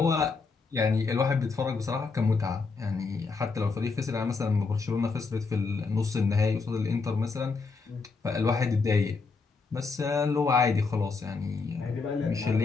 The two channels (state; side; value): quieter; right; 4.4 dB